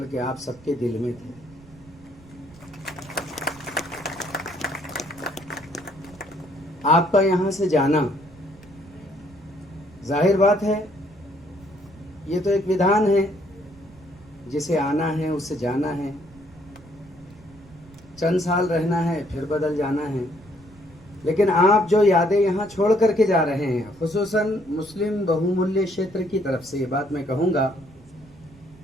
आप सबके दिल में थे। आपका यहां से जाना, जाहिर बात है ये तो एक विधान है, जिसे आना है उससे जाना है, चंद साल रहना है फिर बदल जाना है। लेकिन आप जो यादें यहाँ छोड़ करके जा रहे हैं, खुसूसन मुस्लिम बहुमूल्य क्षेत्र की तरफ से ये बात मैं कहूँगा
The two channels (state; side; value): noise; right; rumble, 24 dB below the sound